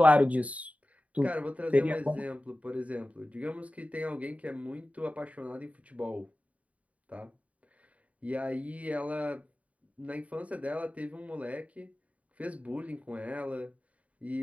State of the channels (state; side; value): late; left; 0.067 ms